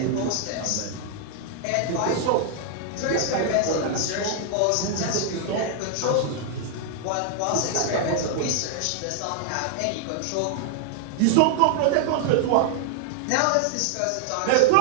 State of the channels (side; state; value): both; different; correlation 0.00